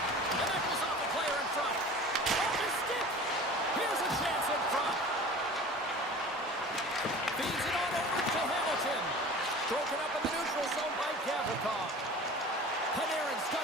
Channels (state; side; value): normal; both; correlation 0.40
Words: And that goes off the player in front. Off his stick. Here's a chance in front. Feeds it on over to Hamilton. Broken up in the neutral zone by Gavrikov. Panarin's got